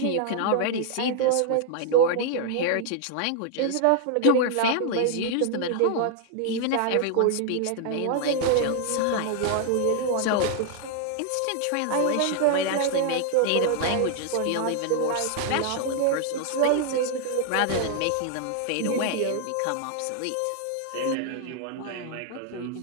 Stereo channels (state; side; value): different; both; correlation 0.00